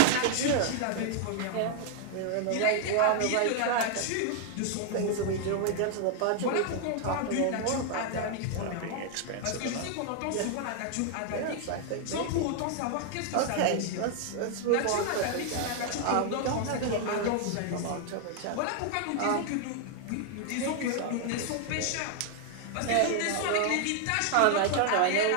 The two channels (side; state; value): both; different; correlation 0.00